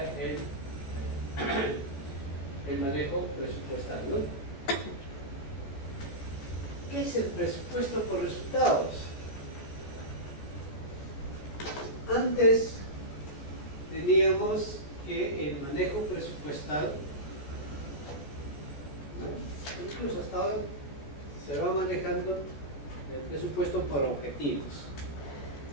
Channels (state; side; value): late; right; 14 ms